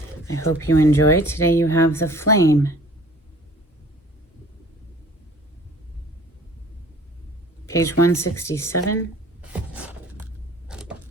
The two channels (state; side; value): normal; both; correlation 0.51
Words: I hope you enjoy. Today you have the Flame. Page 167.